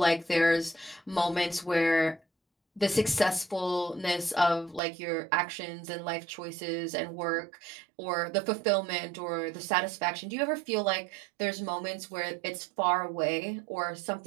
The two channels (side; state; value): left; drops out; at 4.8 s